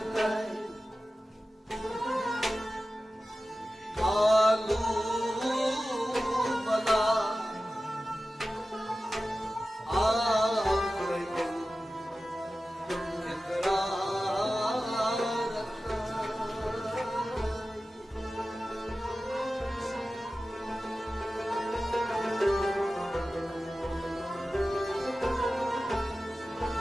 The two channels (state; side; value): normal; both; correlation 0.95